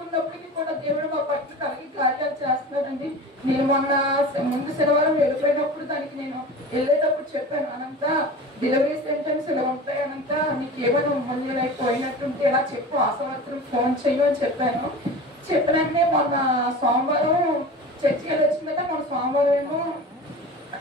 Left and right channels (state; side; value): normal; both; correlation 0.34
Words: కూడా దేవుడు మా పట్ల కలిగి కార్యాలు చేస్తున్నాడండి. నేను ముందు శనివారం వెళ్ళిపోయినప్పుడు దానికి నేను వెళ్ళేటప్పుడు చెప్పాను, అనంతా డెలివరీ సెంటెన్స్ ఇలా ఉంటాయి, అనంతా నీకు ఏమైనా ముందు అయిపోయినట్టుంటే ఇలా చెప్పు, ఆశవర్తులు ఫోన్ చెయ్యు అని చెప్పాను. చెప్పినట్టే మొన్న సోమవారం చర్చికి వచ్చిన కదా, మొన్న సోమవారం ఏమో